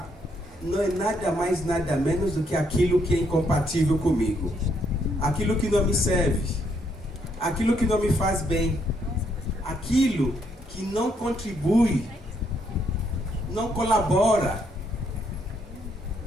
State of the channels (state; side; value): normal; both; correlation 0.73